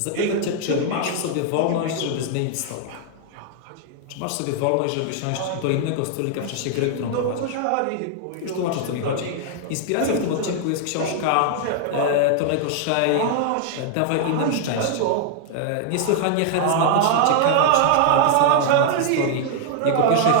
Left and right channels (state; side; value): different; both; correlation 0.00